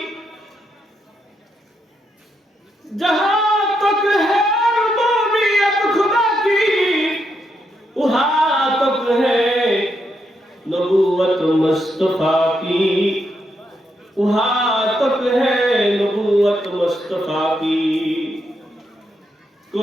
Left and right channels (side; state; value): both; normal; correlation 0.80